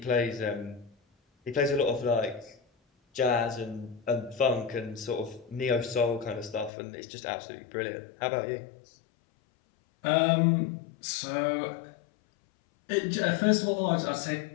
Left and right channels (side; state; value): right; drops out; at 6.7 s